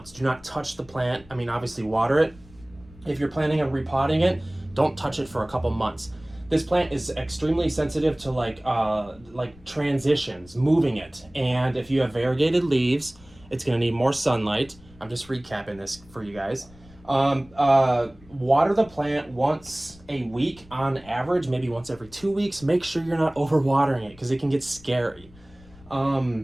Do not touch the plant. I mean, obviously water it. If you're planning on repotting it, don't touch it for a couple months. This plant is extremely sensitive to like transitions, moving it. And if you have variegated leaves, it's gonna need more sunlight. I'm just recapping this for you guys. Water the plant once a week on average, maybe once every 2 weeks. Make sure you're not overwatering it because it can get scary.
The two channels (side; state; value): left; noise; rumble, 24 dB below the sound